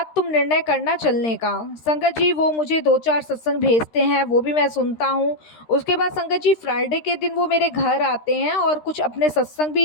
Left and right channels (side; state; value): right; late; 13 ms